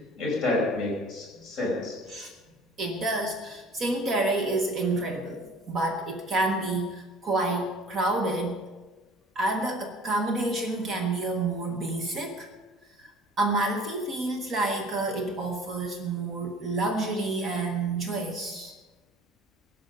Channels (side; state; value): both; normal; correlation 0.48